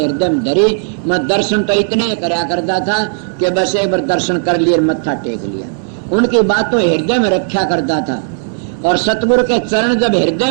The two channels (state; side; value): silent; left; digital silence